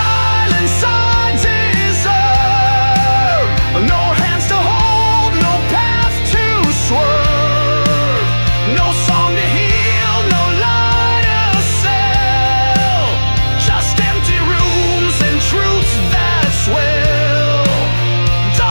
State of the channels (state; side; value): inverted; both; correlation -1.00